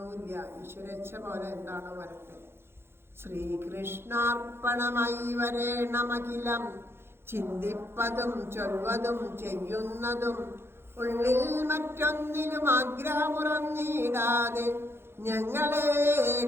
ഈശ്വരേച്ഛ പോലെ എന്താണോ വരട്ടെ. ശ്രീകൃഷ്ണാർപ്പണമായി വരേണമഖിലം, ചിന്തിപ്പതും ചൊൽവതും ചെയ്യുന്നതും ഉള്ളിൽ മറ്റൊന്നിനും ആഗ്രഹമുറന്നിടാതെ ഞങ്ങളെ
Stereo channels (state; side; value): late; left; 0.12 ms